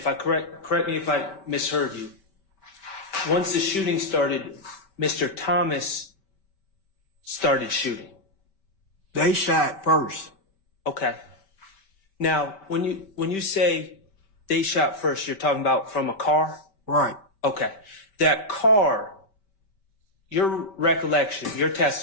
I correct me if I misheard you. Once the shooting started, Mr. Thomas started shooting. They shot first. Okay. Now, when you say they shot first, you're talking about from a car? Right. Okay. That car, your recollection, your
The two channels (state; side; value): late; right; 5.2 ms